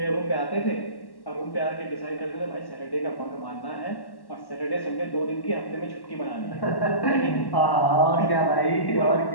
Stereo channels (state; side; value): late; right; 1.1 ms